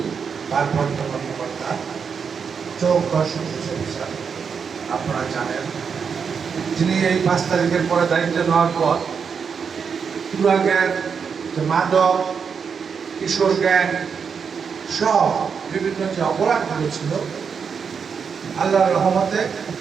ভারপ্রাপ্ত কর্মকর্তা চৌকা অফিসার আপনারা জানেন, যিনি এই 5 তারিখের পরে দায়িত্ব নেওয়ার পর পুরা গ্যাং, মাদক, কিশোর গ্যাং সব বিভিন্ন যে অপরাধগুলো ছিল, আল্লাহর রহমতে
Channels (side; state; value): left; quieter; 6.3 dB